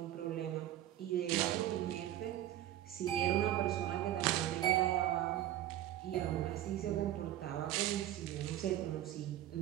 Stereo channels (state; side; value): quieter; left; 13.0 dB